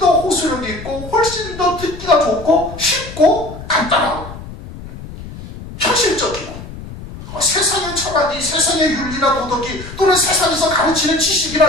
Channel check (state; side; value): noise; left; rumble, 13 dB below the sound